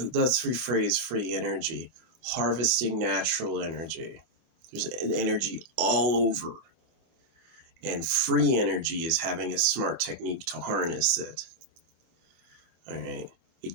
Let's rephrase free energy. Harvesting natural energy. There's an energy all over. And free energy is having a smart technique to harness it. All right. It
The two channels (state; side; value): late; left; 24 ms